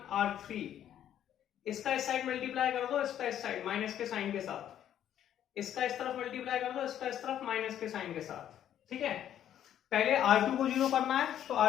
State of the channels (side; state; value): right; quieter; 10.7 dB